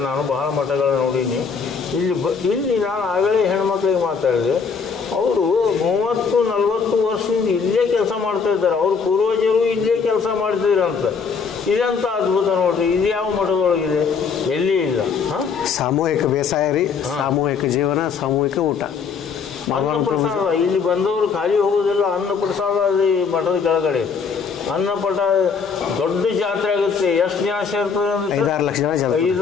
ನಾನು ಬಹಳ ಮಠಗಳನ್ನ ನೋಡೀನಿ. ಇಲ್ಲಿ ನಾನು ಆಗಲೇ ಹೆಣ್ಮಕ್ಳಿಗೆ ಮಾತಾಡಿದೆ, ಅವರು 30-40 ವರ್ಷದಿಂದ ಇಲ್ಲೇ ಕೆಲಸ ಮಾಡ್ತಾ ಇದ್ದಾರೆ. ಅವ್ರ ಪೂರ್ವಜರು ಇಲ್ಲೇ ಕೆಲಸ ಮಾಡ್ತಿದ್ರಂತ. ಇದಂತ ಅದ್ಭುತ ನೋಡ್ರಿ. ಇದು ಯಾವ ಮಠದೊಳಗಿದೆ? ಎಲ್ಲಿ ಇಲ್ಲ. ಸಾಮೂಹಿಕ ಬೇಸಾಯ ರೀ, ಸಾಮೂಹಿಕ ಜೀವನ, ಸಾಮೂಹಿಕ ಊಟ, ಅನ್ನ ಪ್ರಸಾದ. ಇಲ್ಲಿ ಬಂದವರು ಖಾಲಿ ಹೋಗೋದಿಲ್ಲ. ಅನ್ನ ಪ್ರಸಾದ ಈ ಮಠದ ಕೆಳಗಡೆ ಅನ್ನಪಟ ದೊಡ್ಡ ಜಾತ್ರೆ ಆಗುತ್ತೆ. ಎಷ್ಟು ಜನ ಸೇರ್ತದೆ ಅಂದ್ರೆ 5-6 ಲಕ್ಷ ಜನ.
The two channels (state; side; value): quieter; right; 5.7 dB